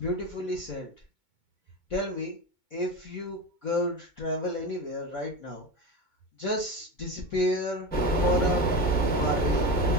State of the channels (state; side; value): late; right; 2.2 ms